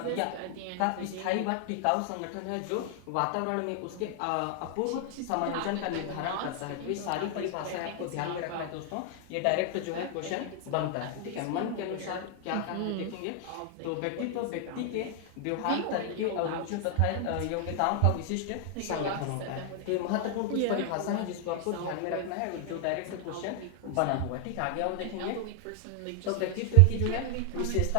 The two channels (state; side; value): different; both; correlation 0.00